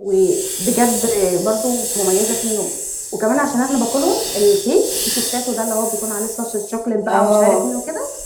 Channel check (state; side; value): identical; both; correlation 1.00